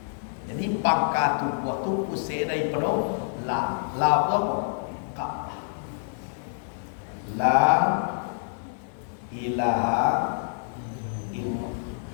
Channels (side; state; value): right; silent; digital silence